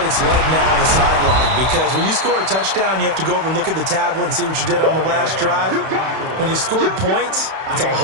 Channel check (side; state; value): left; late; 31 ms